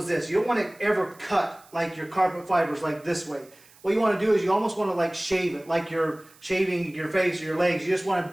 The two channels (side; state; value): right; noise; hiss, 27 dB below the sound